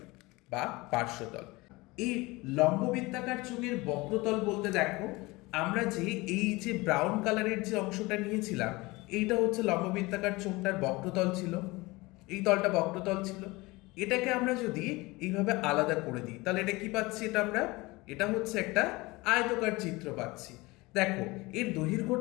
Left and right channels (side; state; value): right; quieter; 22.5 dB